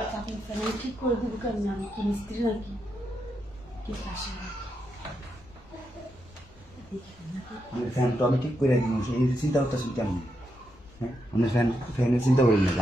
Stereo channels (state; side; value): normal; both; correlation 0.83